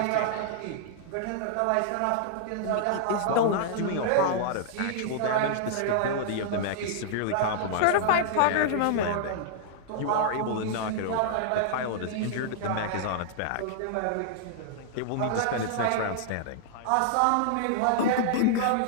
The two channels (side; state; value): both; different; correlation -0.01